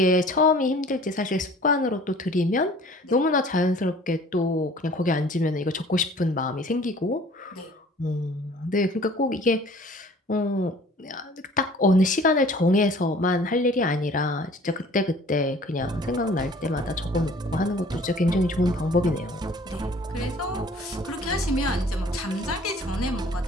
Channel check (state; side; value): normal; both; correlation 0.50